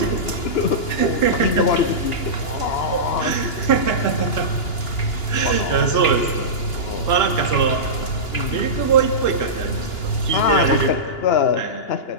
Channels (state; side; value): late; right; 2.9 ms